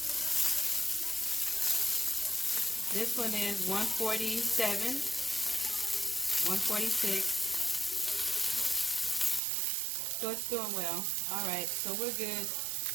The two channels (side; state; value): left; drops out; at 9.4 s